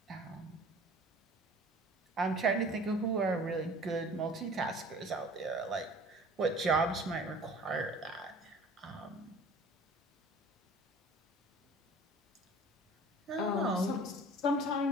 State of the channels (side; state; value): both; normal; correlation 0.46